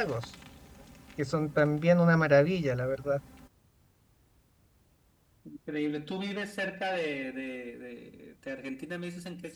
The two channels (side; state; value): both; identical; correlation 1.00